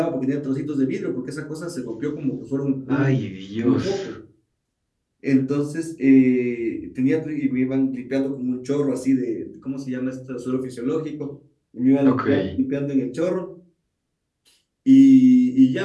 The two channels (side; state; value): both; identical; correlation 1.00